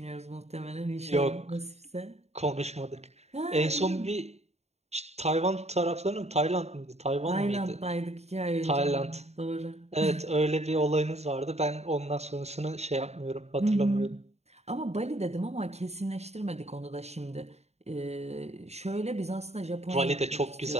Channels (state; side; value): late; left; 0.31 ms